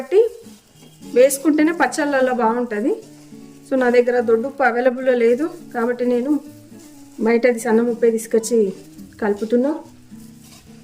వేసుకుంటేనే పచ్చళ్ళల్లో బాగుంటుంది. సో నా దగ్గర దొడ్డుప్పు అవైలబుల్లో లేదు కాబట్టి నేను బయటది సన్న ఉప్పే తీసుకొచ్చి కలుపుతున్నా.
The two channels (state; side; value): identical; both; correlation 1.00